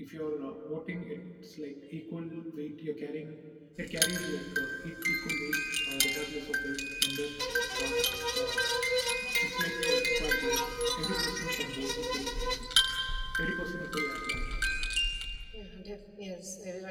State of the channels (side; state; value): both; identical; correlation 1.00